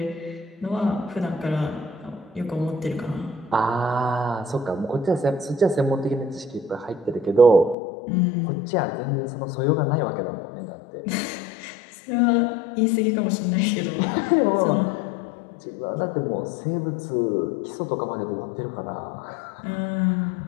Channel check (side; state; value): right; drops out; at 7.8 s